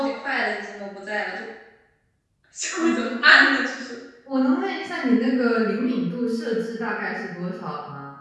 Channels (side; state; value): both; identical; correlation 1.00